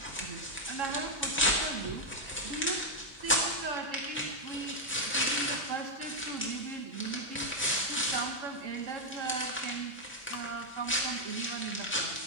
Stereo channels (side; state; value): both; normal; correlation 0.00